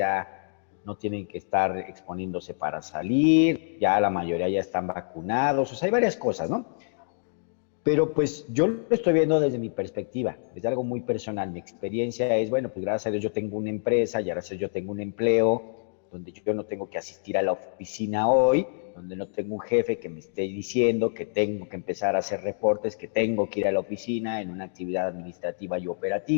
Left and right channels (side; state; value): right; silent; digital silence